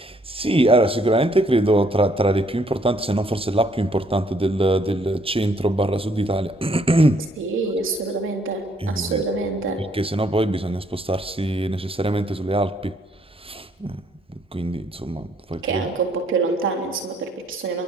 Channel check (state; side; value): normal; both; correlation 0.67